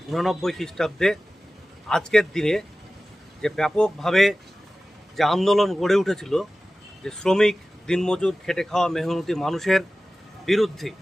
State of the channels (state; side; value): normal; both; correlation 0.96